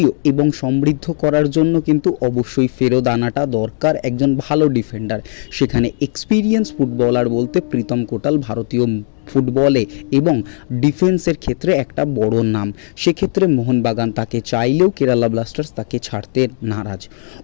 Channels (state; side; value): silent; right; 63 dB below the other